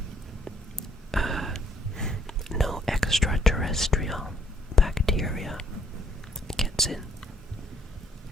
no extraterrestrial bacteria gets in.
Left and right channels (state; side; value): normal; both; correlation 0.68